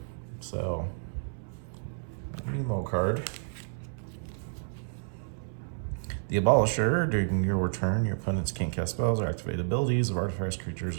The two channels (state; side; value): silent; left; 57 dB below the other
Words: So, Nemo card. The Abolisher. During your turn, your opponents can't cast spells or activate abilities of artifacts, creatures,